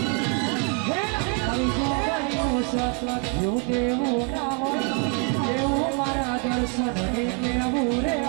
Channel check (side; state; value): left; quieter; 33.9 dB